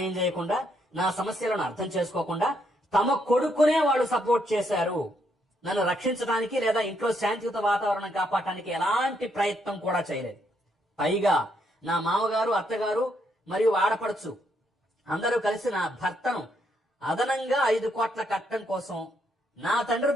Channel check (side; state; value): both; normal; correlation 0.75